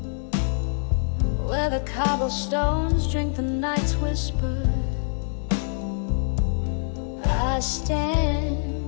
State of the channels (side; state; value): right; silent; 62 dB below the other